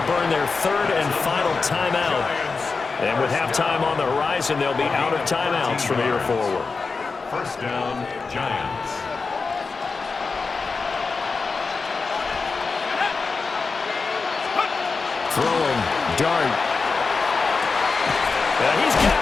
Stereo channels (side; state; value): right; quieter; 4.5 dB